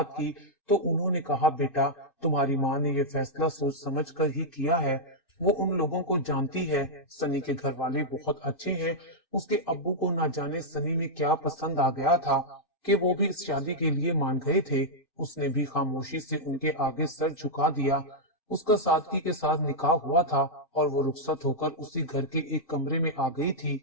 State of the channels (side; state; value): right; late; 2.6 ms